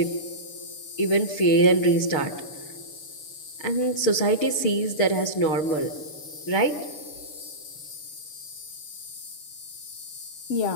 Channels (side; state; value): right; late; 6.8 ms